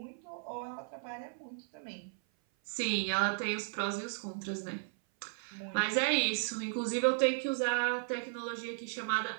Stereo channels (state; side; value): silent; left; 54 dB below the other